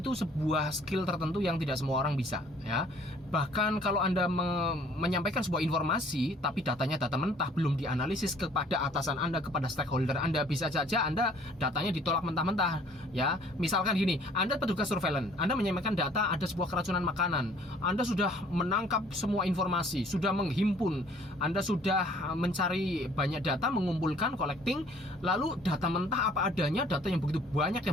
sebuah skill tertentu yang tidak semua orang bisa, ya. Bahkan kalau Anda menyampaikan sebuah informasi tapi datanya data mentah, belum dianalisis kepada atasan Anda, kepada stakeholder Anda, bisa saja Anda datanya ditolak mentah-mentah, ya. Misalkan gini, Anda petugas surveillance, Anda menyampaikan data ada sebuah keracunan makanan, Anda sudah menangkap semua informasi, sudah menghimpun, Anda sudah mencari banyak data, mengumpulkan, collecting, lalu data mentah apa adanya, data yang begitu banyak,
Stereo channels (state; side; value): normal; both; correlation 0.57